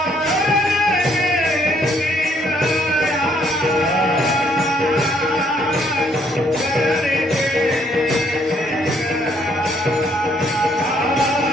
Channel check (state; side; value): normal; both; correlation 0.67